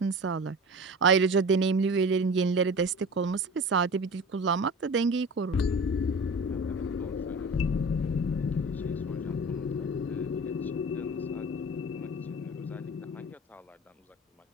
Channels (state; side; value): normal; both; correlation 0.36